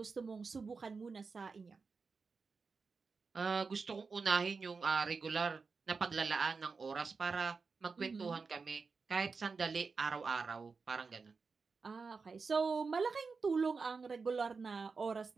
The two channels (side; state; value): left; quieter; 4.7 dB